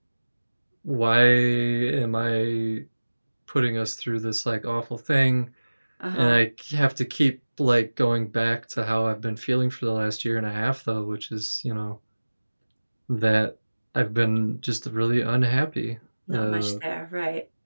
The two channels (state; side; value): inverted; both; correlation -1.00